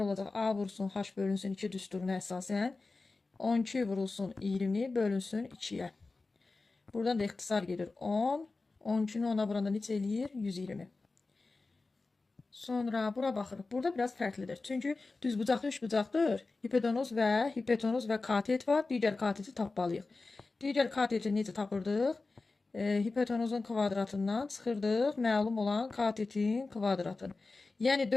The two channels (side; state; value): right; quieter; 3.6 dB